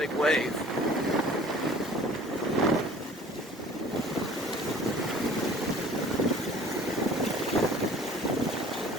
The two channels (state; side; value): normal; both; correlation 0.49